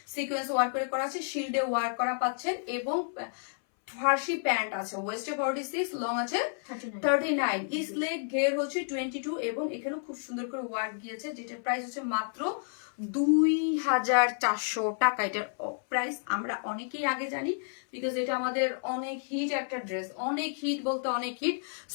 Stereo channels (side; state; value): right; silent; 57 dB below the other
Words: সিকোয়েন্স ওয়ার্ক করে করা আছে, শিল্ডে ওয়ার্ক করা পাচ্ছেন এবং ফার্সি প্যান্ট আছে, ওয়েস্টে 46, লং আছে 39, ইস্ট লেগ ঘের হচ্ছে 22 এবং এখানেও খুব সুন্দর করে ওয়ার্ক দিয়েছে, যেটার প্রাইস হচ্ছে মাত্র 2400 টাকা। এটার প্রাইস আমরা অনেকেই আগে জানি, বিকজ এটা আমাদের অনেক হিট একটা ড্রেস, অনেক হিট বলতে অনেক হিট।